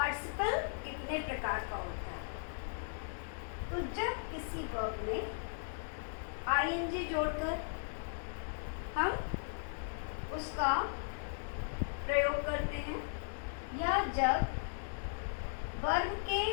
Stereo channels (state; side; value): silent; right; digital silence